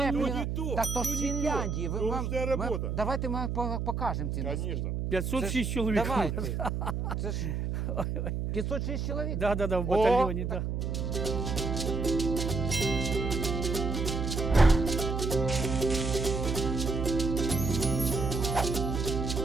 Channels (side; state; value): right; noise; hum, 1 dB below the sound